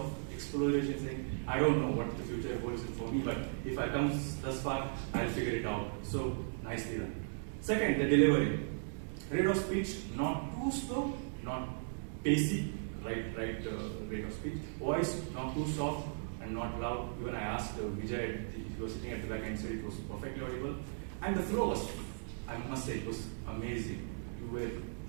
exploration, saying, I don't know what the future holds for me, but if I come thus far, I'll figure it out. So, nicely done. Second, the delivery. Rate of speech, not too slow, not pacey, right rate of speech. Voice, not too soft and not loud. Even I asked Vijay, he was sitting at the back and said it was perfectly audible. And the flow was, I must say, it was amazing. You were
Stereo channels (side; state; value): left; silent; digital silence